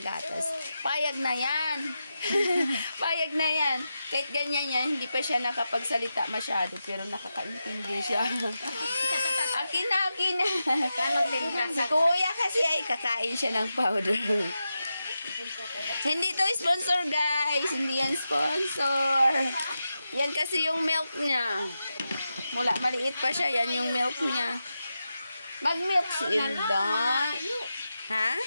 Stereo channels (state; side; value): inverted; both; correlation -0.90